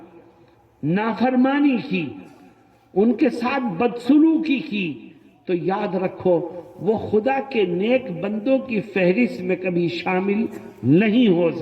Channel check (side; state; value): both; identical; correlation 1.00